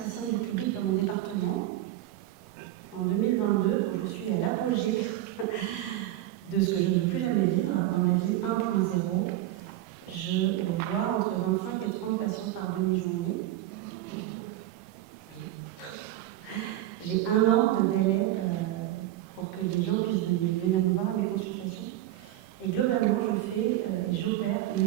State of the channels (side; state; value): left; quieter; 14.3 dB